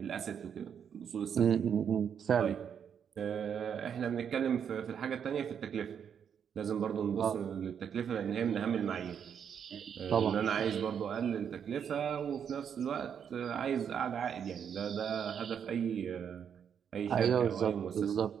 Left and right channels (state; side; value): quieter; left; 7.9 dB